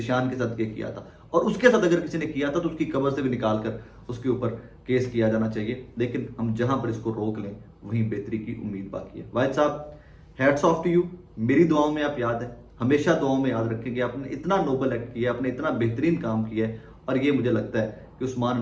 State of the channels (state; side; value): identical; both; correlation 1.00